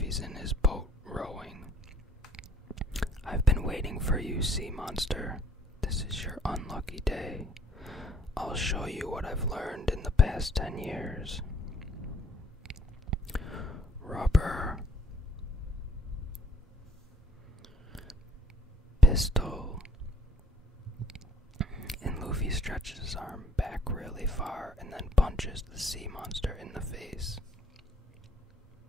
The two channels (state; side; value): normal; both; correlation 0.62